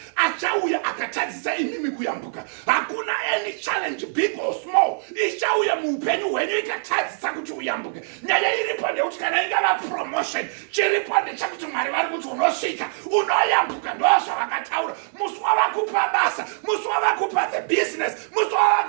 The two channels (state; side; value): silent; left; digital silence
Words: achauya akatadzisa imimi kuyambuka. Hakuna any challenge big or small ichauya muupenyu hwenyu ikatadzisa kuti uyambuke. Nyaya iripo ndekuti kana ingava promotion, chiripo ndechekuti Mwari vari kuti unosvika, unoyambuka. Ndozvavakataura. Musi wavakupa basa, musi wavakupa the business, musi